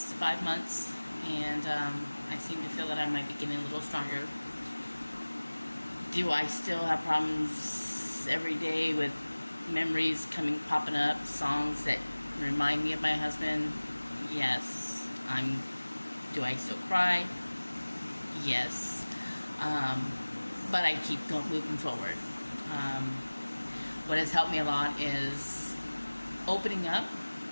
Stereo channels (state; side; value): inverted; both; correlation -1.00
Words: 5 months, and I seem to feel that I might be getting a little stronger. Do I still have problems every day with memories popping up, songs that remind me of my husband? Yes. Do I still cry? Yes. But I keep moving forward. What has helped me a lot is opening up,